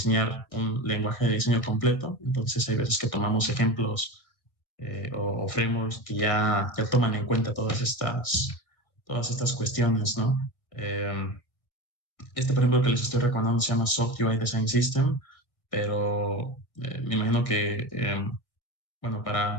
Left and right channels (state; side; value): late; right; 1.6 ms